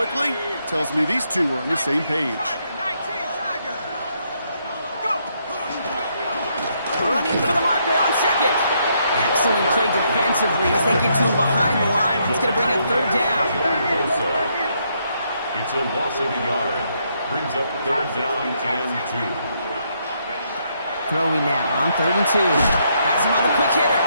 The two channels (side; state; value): both; inverted; correlation -0.75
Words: tells me these two are on the same page. Running for the marker on second. Excellent play defensively as they get to him behind the line. That's going to bring up third down. It's a loss of a yard. Brings up third down and 2. Throwing now on 3rd and 2. Has him on the quick hitter.